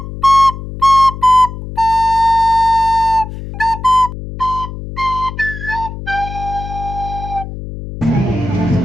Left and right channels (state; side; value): noise; left; hum, 10 dB below the sound